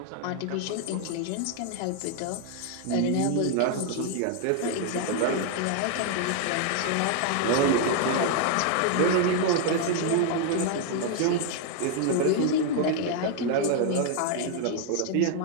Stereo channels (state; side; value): different; both; correlation 0.00